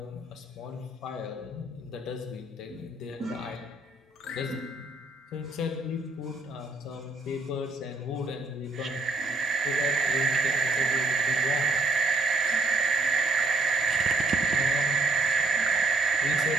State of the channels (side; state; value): left; quieter; 3.1 dB